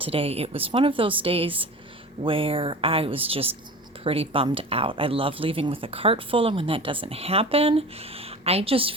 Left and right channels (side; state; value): both; normal; correlation 0.35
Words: It was one of those days where I was just pretty bummed out. I love leaving with a cart full, and when that doesn't happen, I just